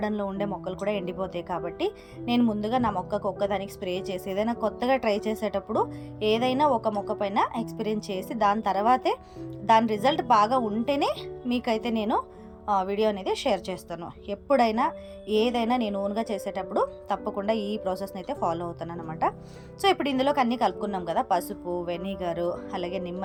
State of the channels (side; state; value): both; identical; correlation 1.00